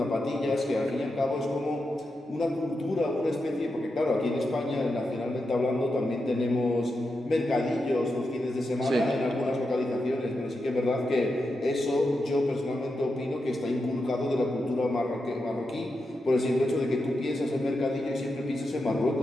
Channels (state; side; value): normal; both; correlation 0.87